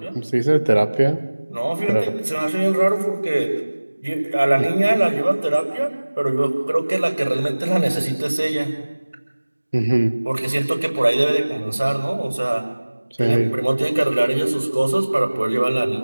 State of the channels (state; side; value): inverted; both; correlation -1.00